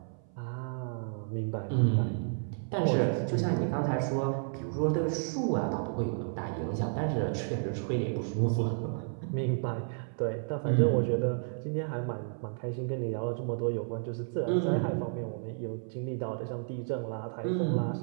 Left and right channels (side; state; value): left; silent; 57 dB below the other